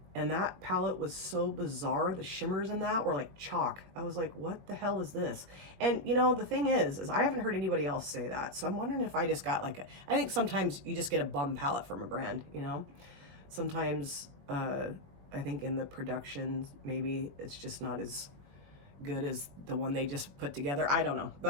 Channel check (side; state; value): left; late; 21 ms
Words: and that palette was so bizarre. The shimmers in that were like chalk. I was like, what the hell is this? And you know, the thing is I haven't heard anybody else say that. So I'm wondering if I just got like I think sometimes you just get a bum palette from a brand, you know? Sometimes I think in the production, maybe it's just not as good as the one they just put together. I don't know.